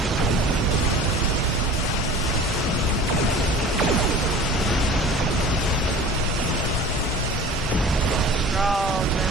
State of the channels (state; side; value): normal; both; correlation 0.41